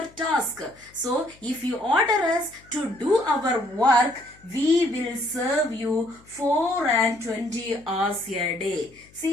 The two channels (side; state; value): left; noise; hum, 27 dB below the sound